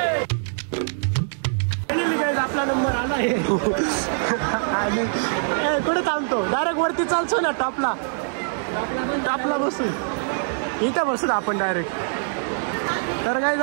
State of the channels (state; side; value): silent; left; digital silence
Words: आपला नंबर आला आहे आणि कुठे थांबतो डायरेक्ट वरती चालतो ना टॉपला बसू इथं बसू आपण डायरेक्ट. तर काय